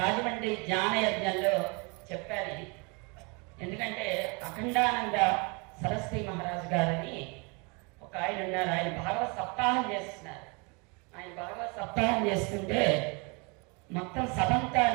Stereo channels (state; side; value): quieter; left; 31.0 dB